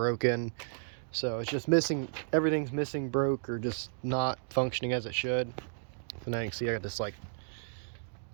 So it's just missing, everything's missing, broke, or just not functioning as it should. So now you can see I got this like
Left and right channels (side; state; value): left; silent; digital silence